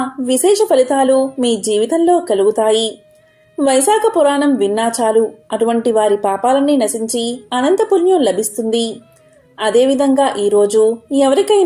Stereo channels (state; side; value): identical; both; correlation 1.00